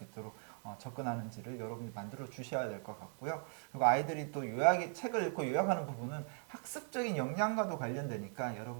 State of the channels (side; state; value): left; silent; 52 dB below the other